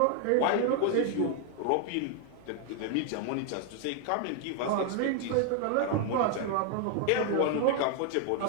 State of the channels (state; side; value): different; both; correlation 0.00